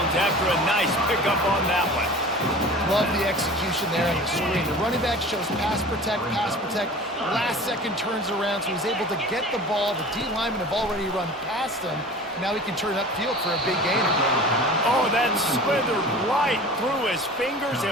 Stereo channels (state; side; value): normal; both; correlation 0.39